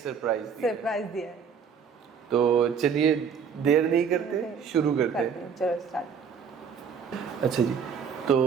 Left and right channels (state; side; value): quieter; left; 6.7 dB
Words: दिया है। तो चलिए देर नहीं करते, शुरू करते हैं। चलो स्टार्ट। अच्छा जी,